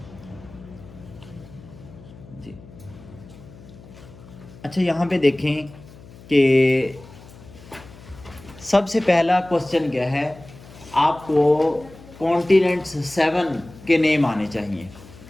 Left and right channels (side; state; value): left; noise; hum, 20 dB below the sound